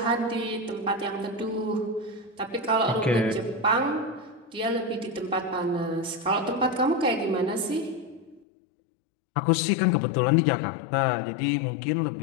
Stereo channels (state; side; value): drops out; right; at 8.4 s